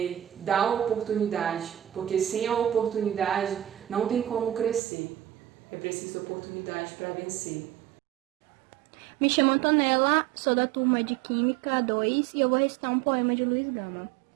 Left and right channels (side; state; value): left; drops out; at 4.8 s